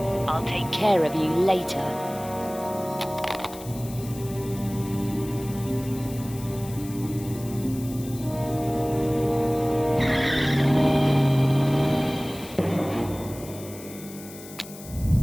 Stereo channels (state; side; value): noise; left; hiss, 16 dB below the sound